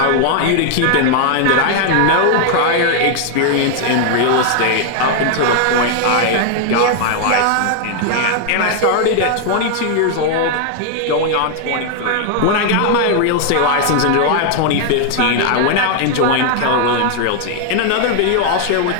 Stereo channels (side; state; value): both; different; correlation 0.00